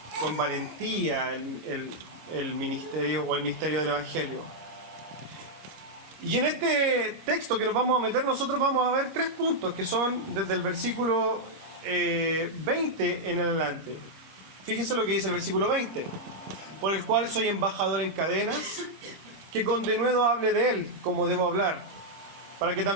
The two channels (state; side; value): late; left; 25 ms